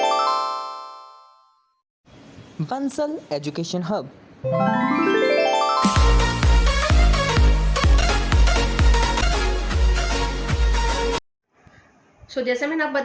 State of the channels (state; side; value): identical; both; correlation 1.00